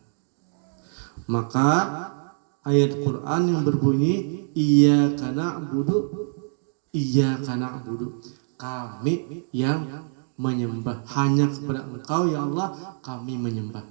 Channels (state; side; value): silent; left; digital silence